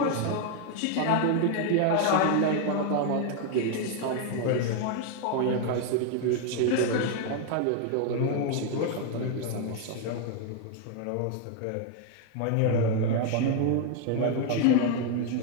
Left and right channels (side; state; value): both; different; correlation 0.00